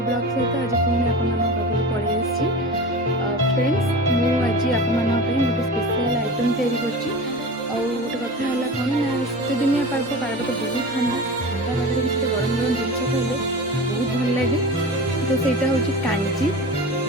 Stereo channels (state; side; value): normal; both; correlation 0.32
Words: ବ୍ଲଗ୍ ସହିତ ଆଜି ପୁଣି ଆପଣମାନଙ୍କ ପାଖକୁ ପଳେଇ ଆସିଛି। ଫ୍ରେଣ୍ଡସ୍, ମୁଁ ଆଜି ଆପଣମାନଙ୍କ ପାଇଁ ଗୋଟେ ସ୍ପେଶାଲ୍ ଆଇଟମ୍ ତିଆରି କରିଛି। ଆଉ ଗୋଟେ କଥା ହେଲା କ'ଣ ନା, ଶୀତଦିନିଆ ପାଗଟା ବହୁତ ଥଣ୍ଡା ପାଗରେ କିଛି ଗରମ ଗରମ ଜିନିଷ ଖାଇଲେ ବହୁତ ଭଲ ଲାଗେ। ତ ସେଇଟା ହେଉଛି କାଞ୍ଜି,